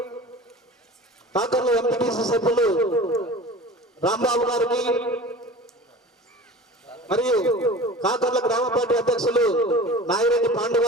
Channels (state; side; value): normal; both; correlation 0.38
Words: కాకర్ల ఎంపీటీసీ సభ్యులు రాంబాబు గారికి మరియు కాకర్ల గ్రామ పార్టీ అధ్యక్షులు నాగిరెడ్డి పాండు